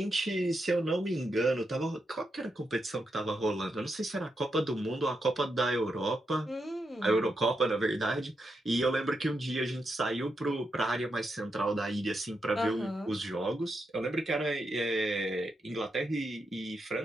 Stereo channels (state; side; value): normal; both; correlation 0.84